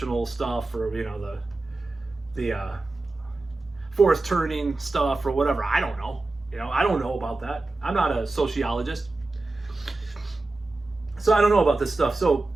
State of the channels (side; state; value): left; quieter; 3.2 dB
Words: stuff, or the fourth turning stuff, or whatever. I don't know. I don't know about that. I'm not a sociologist, so I don't know about this stuff. So,